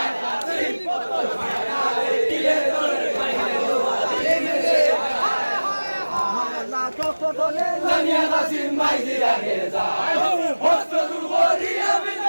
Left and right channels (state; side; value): inverted; both; correlation -1.00